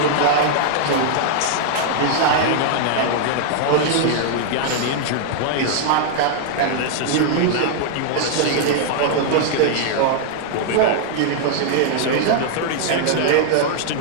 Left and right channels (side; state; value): both; different; correlation -0.01